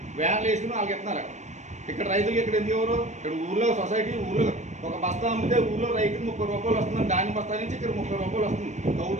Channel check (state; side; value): late; left; 0.34 ms